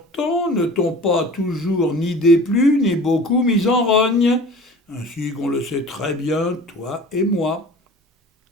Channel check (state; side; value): normal; both; correlation 0.42